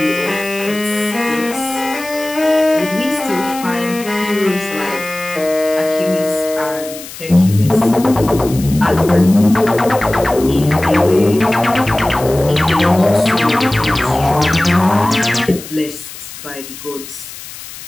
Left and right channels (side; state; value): left; noise; hiss, 14 dB below the sound